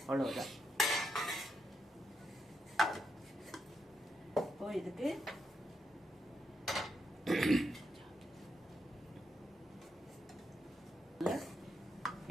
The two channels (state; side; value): normal; both; correlation 0.81